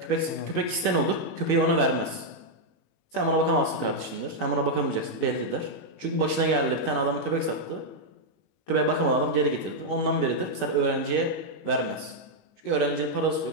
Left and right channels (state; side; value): late; right; 19 ms